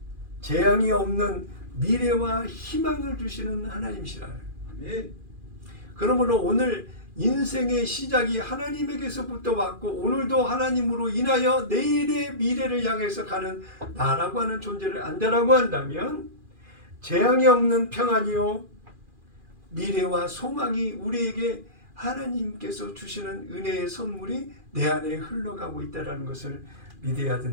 재앙이 없는 미래와 희망을 주시는 하나님이시라. 아멘. 그러므로 오늘 인생의 시작이 하나님에게서부터 왔고 오늘도 하나님으로 인하여 내일의 미래를 향해서 가는 나라고 하는 존재를 안다라고 한다면 재앙이 없는 평안이요 미래와 소망이 우리에게 하나님께서 주시는 은혜의 선물이 내 안에 흘러가고 있다는 것을 믿어야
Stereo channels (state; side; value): late; left; 2.4 ms